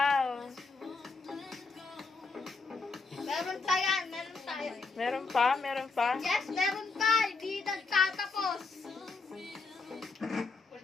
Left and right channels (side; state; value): right; quieter; 4.2 dB